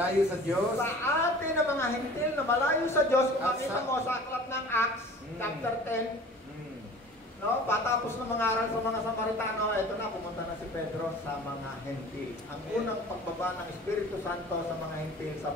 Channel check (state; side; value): normal; both; correlation 0.44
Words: sa Diyos. Sa atin na mga hentil na malayo sa Diyos. Kung makita mo sa aklat ng Acts, chapter 10, no, patapos na mangaral sa mga Samaritano, ito na, pumunta na si Pedro sa mga hentil. Ang unang pagbaba ng Espiritu Santo sa mga hentil sa